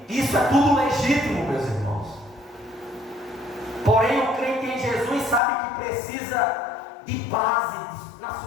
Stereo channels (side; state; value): right; drops out; at 5.4 s